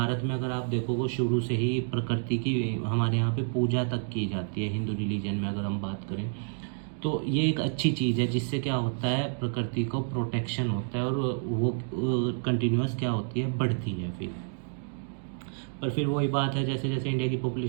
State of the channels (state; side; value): silent; left; 56 dB below the other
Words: में अगर आप देखोगे, शुरू से ही प्रकृति की हमारे यहाँ पे पूजा तक की जाती है, हिंदू रिलीजन में अगर हम बात करें तो ये एक अच्छी चीज़ है, जिससे क्या होता है, प्रकृति को प्रोटेक्शन होता है और वो कंटिन्यूस क्या होती है, बढ़ती है फिर। पर फिर वही बात है, जैसे जैसे इंडिया की